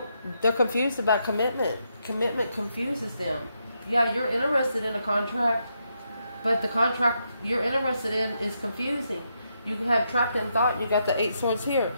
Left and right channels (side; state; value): both; inverted; correlation -0.81